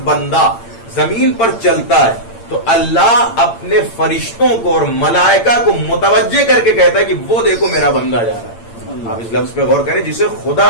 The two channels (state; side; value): late; right; 8.8 ms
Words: بندہ زمین پر چلتا ہے تو اللہ اپنے فرشتوں کو اور ملائکہ کو متوجہ کر کے کہتا ہے کہ وہ دیکھو میرا بندہ جا رہا ہے. آپ اس لفظ پہ غور کریں، جسے خدا